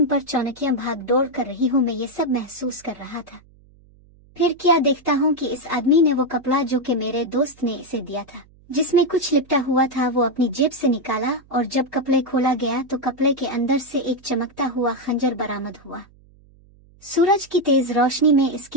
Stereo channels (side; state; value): right; noise; hum, 28 dB below the sound